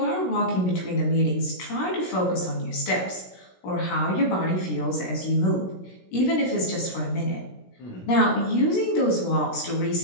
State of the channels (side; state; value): right; late; 16 ms